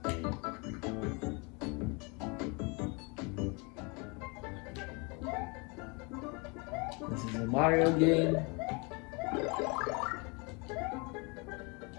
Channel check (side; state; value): right; quieter; 30.4 dB